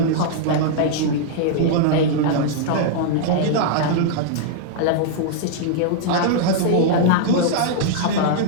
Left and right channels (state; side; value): different; both; correlation -0.01